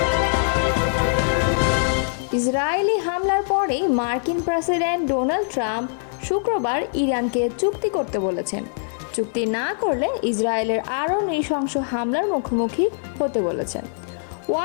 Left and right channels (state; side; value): silent; right; digital silence